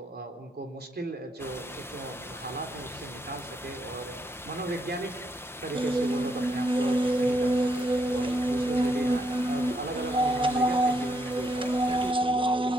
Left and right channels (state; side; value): normal; both; correlation 0.76